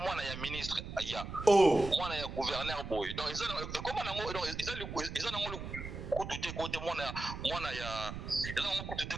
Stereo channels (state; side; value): noise; right; rumble, 8 dB below the sound